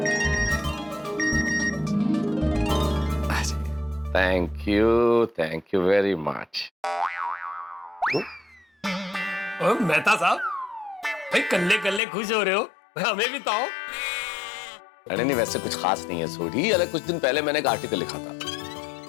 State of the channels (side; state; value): right; drops out; at 12.0 s